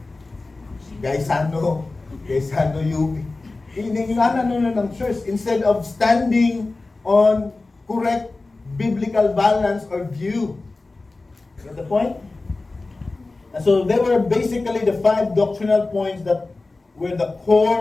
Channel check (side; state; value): right; quieter; 3.4 dB